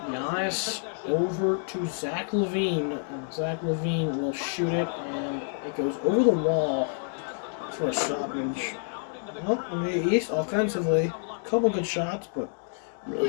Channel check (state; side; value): silent; right; 59 dB below the other